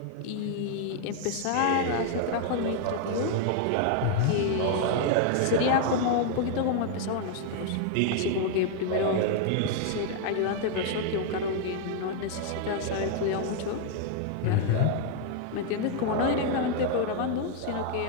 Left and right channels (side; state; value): both; different; correlation 0.00